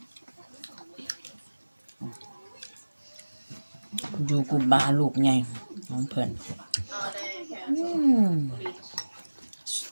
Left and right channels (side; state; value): both; inverted; correlation -1.00